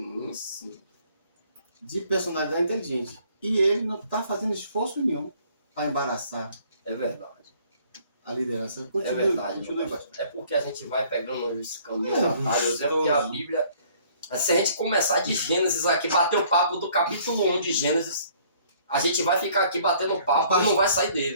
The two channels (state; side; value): inverted; both; correlation -0.59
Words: De personalidade inteligente. E ele não está fazendo esforço nenhum para embaraçar É verdade. a liderança. É verdade. É porque a gente vai pegando os caminhos atalhos. É porque a Bíblia... Se a gente começar de Gênesis aqui, bater o papo do capítulo 1 de Gênesis, a gente vai ficar aqui batendo papo e não vai sair